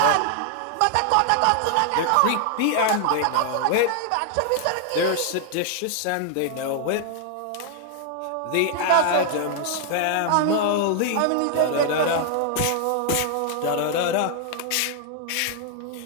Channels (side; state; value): both; different; correlation 0.00